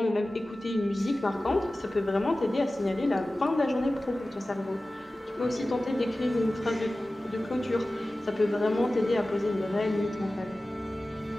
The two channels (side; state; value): both; normal; correlation 0.96